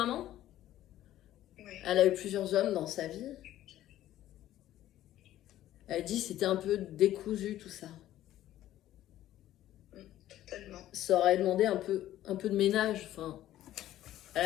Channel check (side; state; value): right; quieter; 13.4 dB